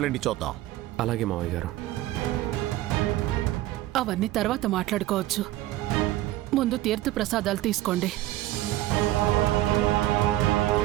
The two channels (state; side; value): quieter; left; 15.6 dB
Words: ఇచ్చొద్దాం. అలాగే మావయ్య గారు. అవన్నీ తర్వాత మాట్లాడుకోవచ్చు. ముందు తీర్థ ప్రసాదాలు తీసుకోండి.